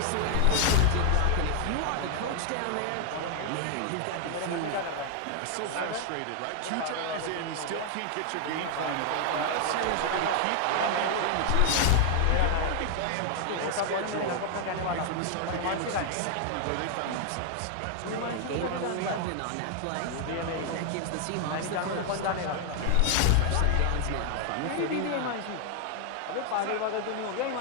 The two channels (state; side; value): different; both; correlation 0.00